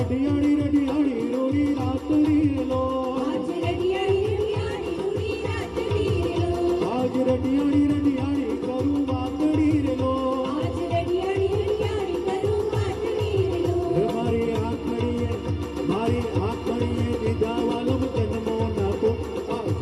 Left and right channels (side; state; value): both; identical; correlation 1.00